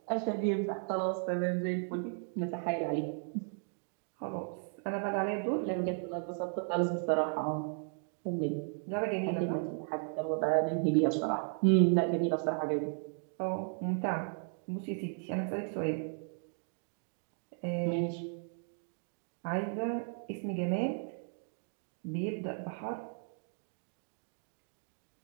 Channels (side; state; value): left; silent; 54 dB below the other